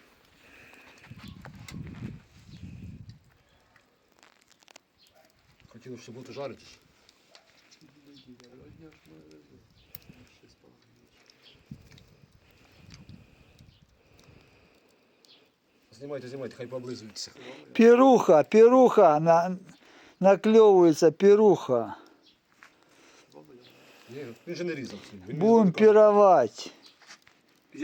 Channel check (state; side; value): identical; both; correlation 1.00